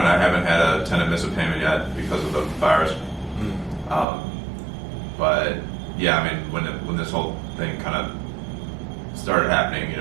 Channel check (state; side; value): drops out; left; at 4.0 s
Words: I haven't had a tenant miss a payment yet because of the virus. But yeah, I mean, when this whole thing kind of started happening, you